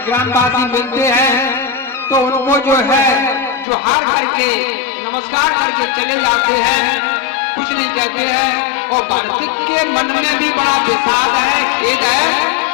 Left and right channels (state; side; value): drops out; right; at 3.7 s